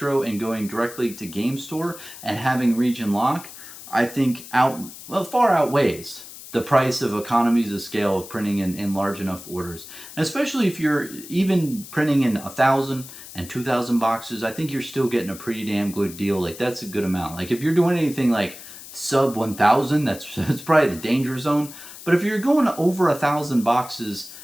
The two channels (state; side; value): noise; left; hiss, 15 dB below the sound